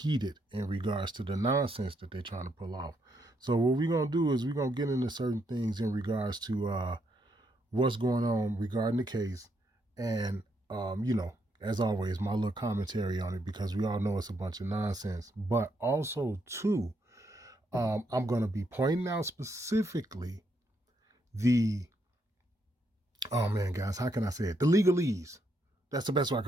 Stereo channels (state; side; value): normal; both; correlation 0.77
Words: in regards to the nonsense that they're trying to pull off. So what we're going to do is we're going to get into certain things in regards to what's going on regarding the case and, as always, my little commentary on it, because we all know it's a bunch of nonsense. But also, too, I'm going to be pointing out specifically oh man, guys, how can I say it? The legalese. That's the best way I